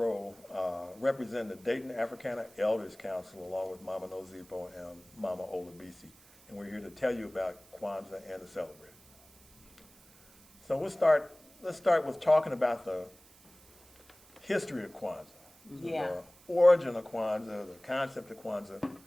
representing the Dayton Africana Elders Council along with Mama Nozipo and Mama Olabisi. And we're here to tell you about Kwanzaa and to celebrate. So let's start with talking about the history of Kwanzaa, Yeah. the origin of Kwanzaa, the concept of Kwanzaa,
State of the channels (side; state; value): right; noise; hiss, 26 dB below the sound